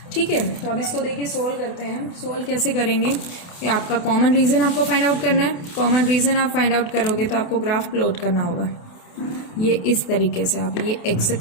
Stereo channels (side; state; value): right; late; 28 ms